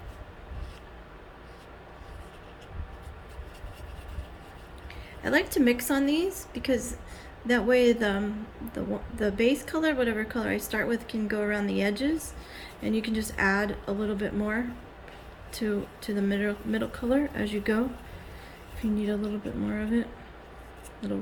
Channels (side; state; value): both; identical; correlation 1.00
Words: I like to mix on these because that way the base color, whatever color I start with, can go around the edges, and you can just add a little bit more to the middle color as you go. If you need a little bit more of it, little